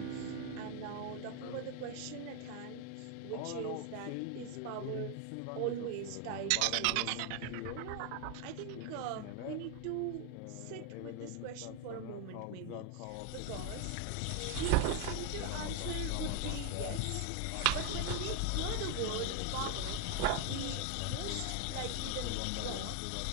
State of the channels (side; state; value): both; different; correlation 0.01